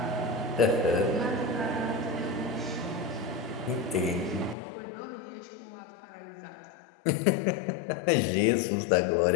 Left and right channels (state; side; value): drops out; right; at 4.5 s